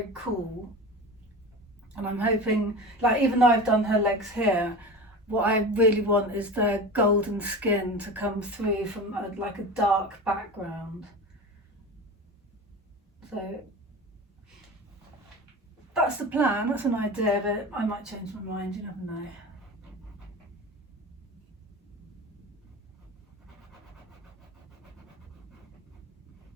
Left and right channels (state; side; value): normal; both; correlation 0.31